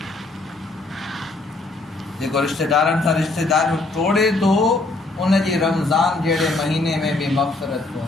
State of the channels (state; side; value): quieter; right; 3.1 dB